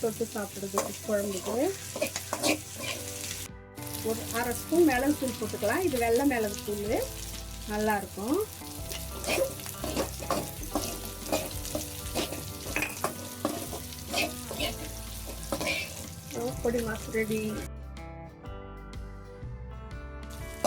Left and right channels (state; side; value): identical; both; correlation 1.00